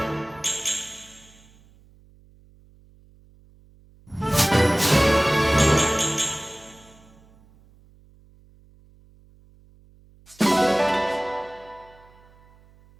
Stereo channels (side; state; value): right; noise; hum, 28 dB below the sound